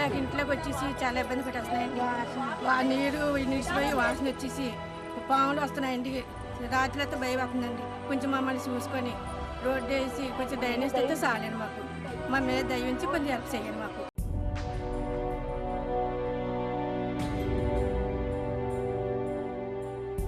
ఇంట్లోకి వచ్చేసి చాలా ఇబ్బంది పెట్టేస్తున్నాయండి. నీరు నిలిచిపోయి వాసన వచ్చేసి పాములు వస్తున్నాయండి. రాత్రి అయితే భయం అవుతుందండి. కొంచెం మమ్మల్ని చూసుకొని రోడ్డు వేసి కొంచెం డ్రైనేజ్ అయితే చాలండి. మాకు మా మీద దయించి కొంచెం హెల్ప్ చేయండి. మాకు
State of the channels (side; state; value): both; identical; correlation 1.00